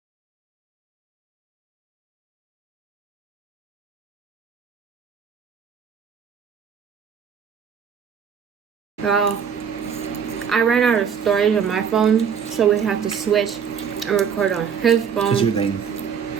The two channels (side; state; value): left; quieter; 7.2 dB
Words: Well, I ran out of storage on my phone, so we had to switch and record on his phone. Because you're lame.